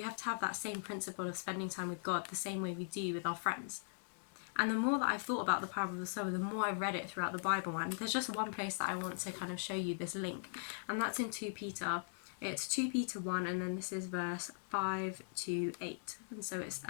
have to have that same principle of spending time with God the same way we do with our friends. And the more that I've thought about the parable of the sower, the more I've read it throughout the Bible. And there's just one place that I want to kind of show you this link, and that's in 2 Peter. It's 2 Peter 1, and then this is verse 5 to 8. And so it's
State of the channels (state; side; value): silent; right; digital silence